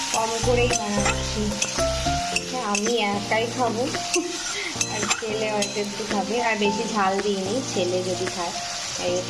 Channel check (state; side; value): identical; both; correlation 1.00